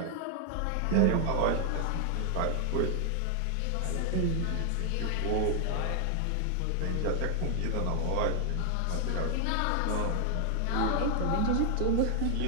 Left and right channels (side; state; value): both; different; correlation 0.00